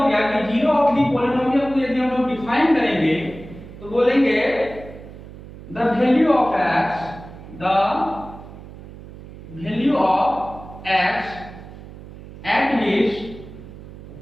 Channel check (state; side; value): noise; right; hum, 16 dB below the sound